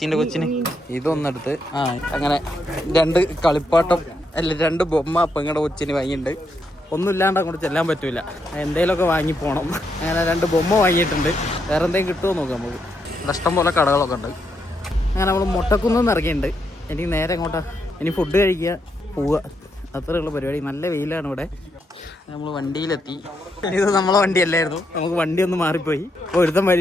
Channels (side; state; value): both; normal; correlation 0.80